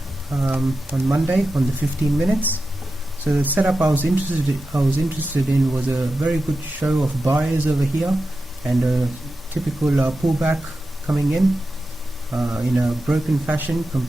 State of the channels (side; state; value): both; normal; correlation 0.91